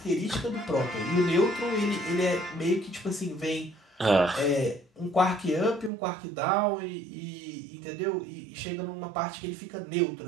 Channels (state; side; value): drops out; left; at 5.9 s